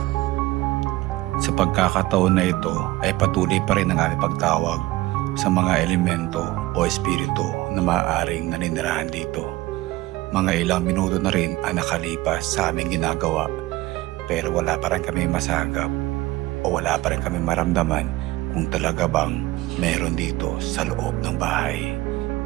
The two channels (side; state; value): left; quieter; 18.6 dB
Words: Sa pagkakataon na ito ay patuloy pa rin ang aming pagtawag sa mga elemento o espiritu na maaaring naninirahan dito. Mga ilang minuto na rin ang nakalipas sa aming ginagawa, pero wala pa rin kami masagap o wala pa rin kami maramdaman kung talaga bang meron dito sa loob ng bahay.